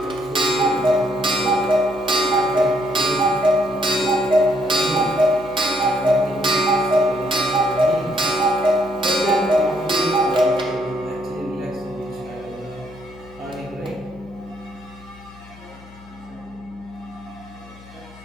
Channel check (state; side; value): noise; left; hum, 21 dB below the sound